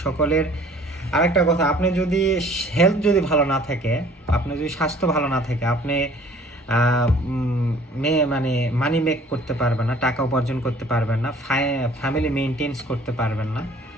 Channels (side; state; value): both; normal; correlation 0.53